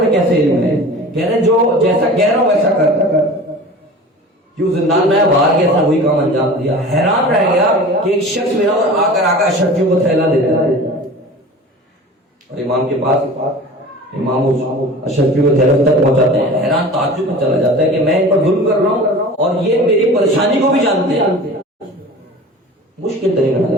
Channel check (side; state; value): both; normal; correlation 0.39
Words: میں کیسے علم ہے؟ کہہ رہے جو جیسا کہہ رہا ہوں ویسا کر. کیوں زندان میں باہر گیا تھا، وہی کام انجام دیا. حیران رہ گیا کہ ایک شخص میرا اور آ کر اشرفیوں کو تھیلا دیتا ہے، اور امام کے پاس امام اشرفیوں کو تھیلا تک پہنچاتے ہیں. حیران تعجب میں چلا جاتا ہے کہ میں ان پر ظلم کر رہا ہوں اور یہ میری پریشانی کو بھی جانتے ہیں. مشکل ترین